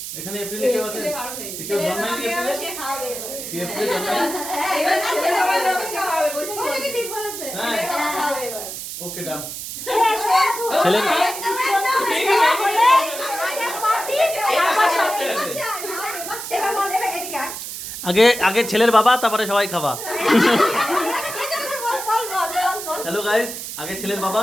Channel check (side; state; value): right; noise; hiss, 8 dB below the sound